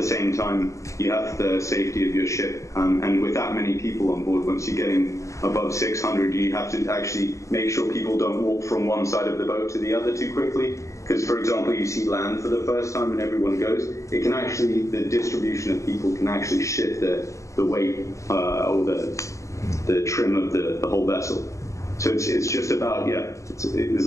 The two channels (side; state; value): right; late; 0.15 ms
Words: same time, you have the safety of your ship, and with that many people on board, once you're getting above 600, you have to actually make sure people don't walk from one side of the boat to the other too quickly. Because, for example, you see land for the first time and everyone goes, it can actually, the distribution of people can actually shift the weight or the trim of the whole vessel. So it's just about, yeah, there's